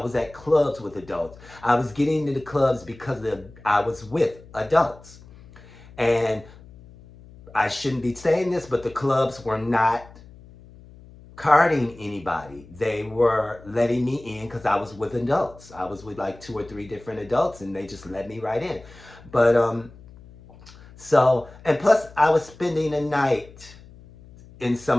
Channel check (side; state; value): left; noise; hum, 21 dB below the sound